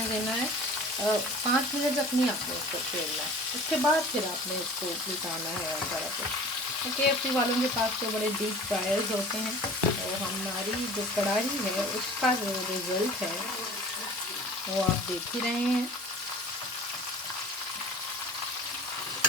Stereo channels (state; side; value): normal; both; correlation 0.43